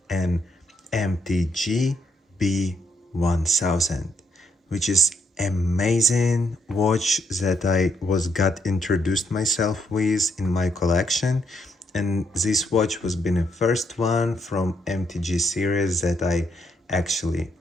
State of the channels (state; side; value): normal; both; correlation 0.74